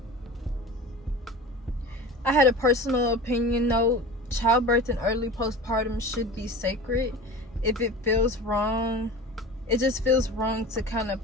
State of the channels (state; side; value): normal; both; correlation 0.35